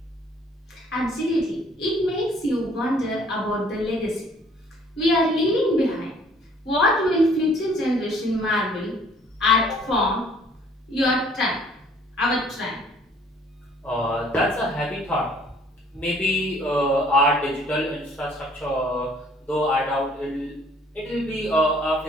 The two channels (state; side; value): normal; both; correlation 0.58